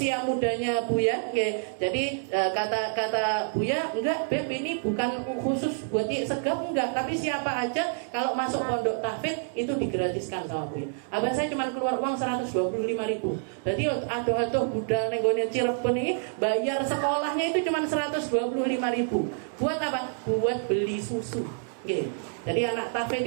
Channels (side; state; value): left; silent; digital silence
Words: mudanya Buya. Jadi kata Buya, enggak Beb, ini bukan khusus buat segap, enggak, tapi siapa aja kalau masuk pondok tahfidz itu digratiskan sama Buya. Abah saya cuma keluar uang 125.000. Jadi aduh budal nenggone Cirebon ini bayar sekolahnya itu cuma 125.000. Buat apa? Buat beli susu. Jadi anak